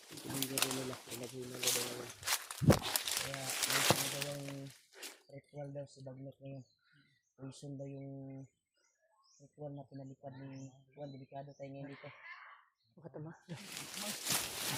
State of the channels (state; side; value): identical; both; correlation 1.00